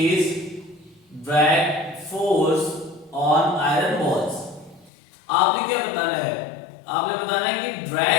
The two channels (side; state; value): right; drops out; at 4.9 s